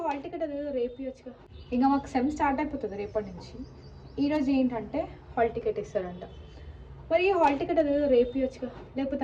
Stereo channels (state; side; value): identical; both; correlation 1.00